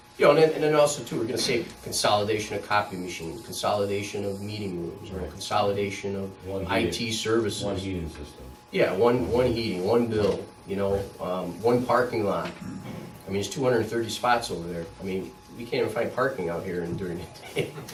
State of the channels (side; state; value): both; identical; correlation 1.00